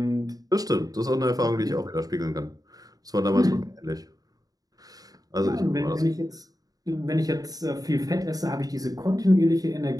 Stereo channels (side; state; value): left; late; 0.18 ms